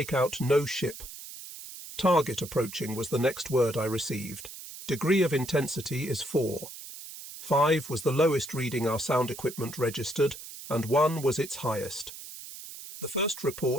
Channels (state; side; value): noise; right; hiss, 13 dB below the sound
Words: out no ship. "Target approaching" was the next word I received. "Degree of intensity is 4. 5 was the lowest reading our sound equipment registered, and 1 was its highest. The first